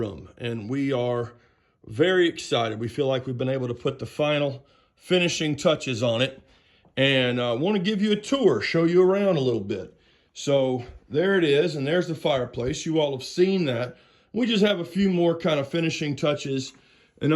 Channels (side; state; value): both; identical; correlation 1.00